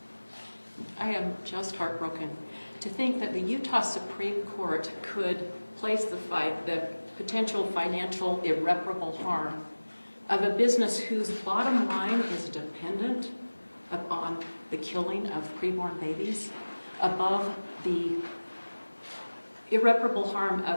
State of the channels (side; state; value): both; inverted; correlation -1.00